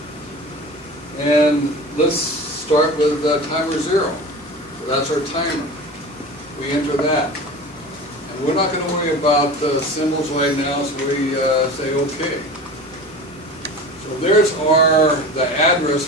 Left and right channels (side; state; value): both; normal; correlation 0.34